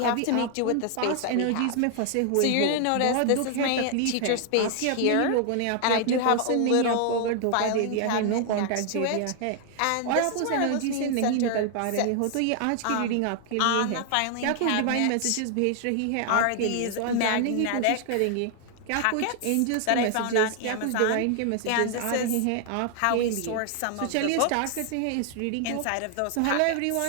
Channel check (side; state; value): both; different; correlation 0.00